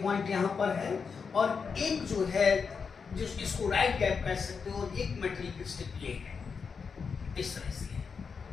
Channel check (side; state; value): right; quieter; 5.7 dB